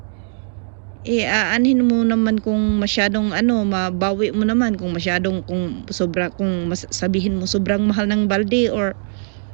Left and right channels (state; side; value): silent; left; digital silence